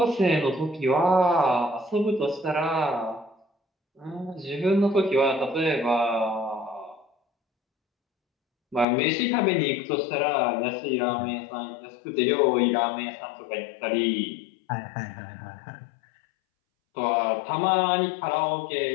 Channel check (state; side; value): drops out; right; at 8.8 s